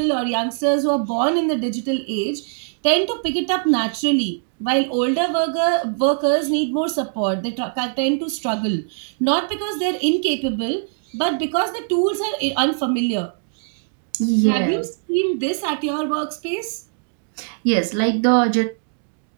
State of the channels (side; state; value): left; silent; digital silence